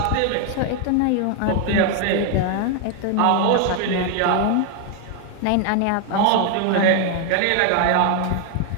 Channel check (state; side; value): different; both; correlation 0.01